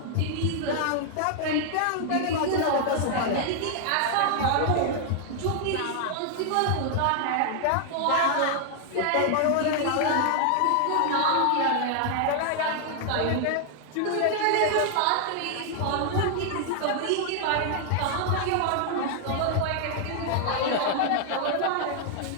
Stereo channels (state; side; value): different; both; correlation 0.00